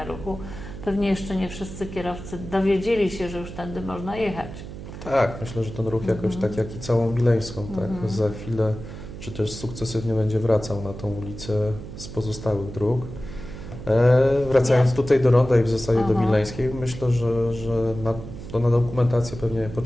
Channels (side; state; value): right; noise; hum, 11 dB below the sound